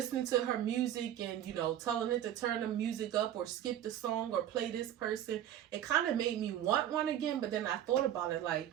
to her music and, telling it to turn the music up or skip the song or play this person, it kind of made me want one again. But then I thought about it like,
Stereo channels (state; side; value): quieter; left; 11.3 dB